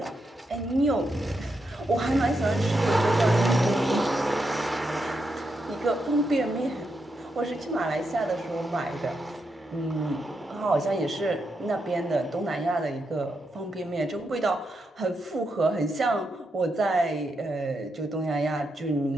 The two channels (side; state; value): both; normal; correlation 0.83